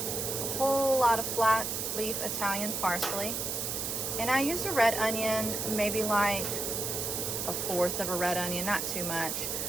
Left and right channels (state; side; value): noise; right; hiss, 2 dB below the sound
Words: Whole lot of flat leaf Italian parsley, and I used a red onion, maybe like 1/4 of a red onion, not too much.